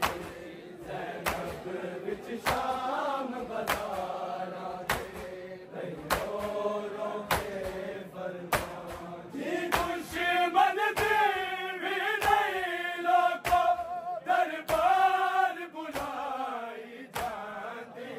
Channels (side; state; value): both; identical; correlation 1.00